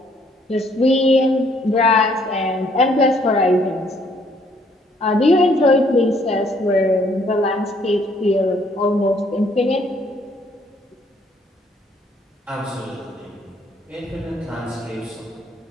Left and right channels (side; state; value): both; normal; correlation 0.65